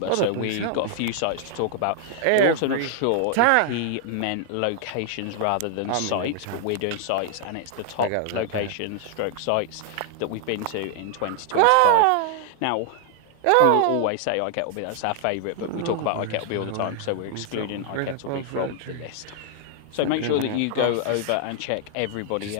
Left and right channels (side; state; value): both; different; correlation 0.00